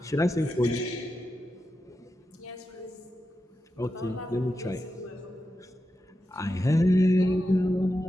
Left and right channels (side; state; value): both; normal; correlation 0.89